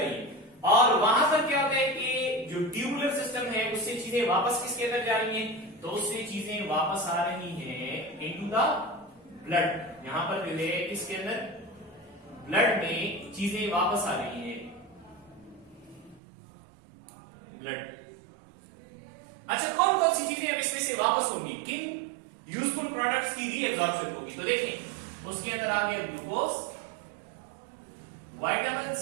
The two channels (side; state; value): left; drops out; at 16.2 s